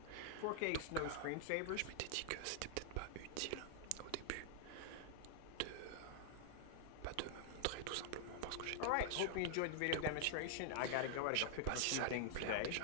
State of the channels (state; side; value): different; both; correlation -0.01